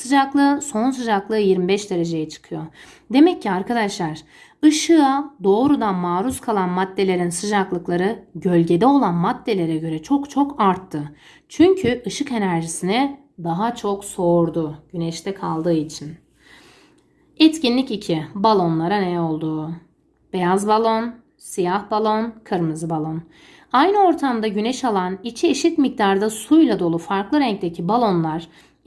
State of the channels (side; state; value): both; identical; correlation 1.00